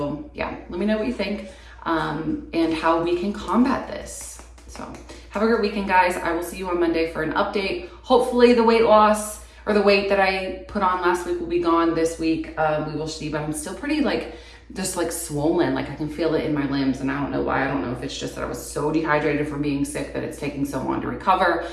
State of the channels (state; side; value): identical; both; correlation 1.00